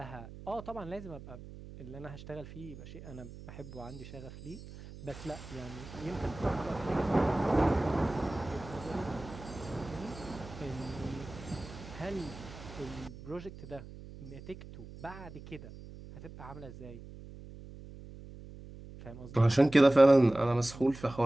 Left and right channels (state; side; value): noise; right; hum, 15 dB below the sound